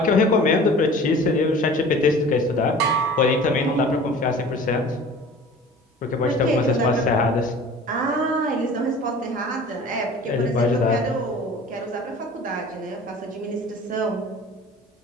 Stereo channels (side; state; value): both; normal; correlation 0.43